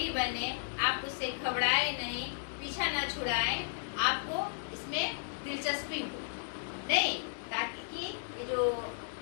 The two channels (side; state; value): right; silent; digital silence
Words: बने, आप उससे घबराए नहीं, पीछा न छुड़ाएं, आपको इसमें दिलचस्पी हो नहीं, ताकि कि ये जो